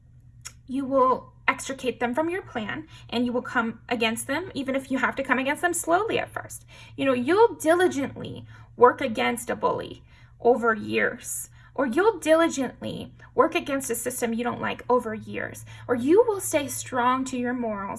you will extricate them from your plan, and you will come against them, even if you have to come against them slowly at first. You'll diligently work against a bully over years, or you'll diligently work against a system you don't like over years, or you will stay strong to your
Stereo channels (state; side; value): identical; both; correlation 1.00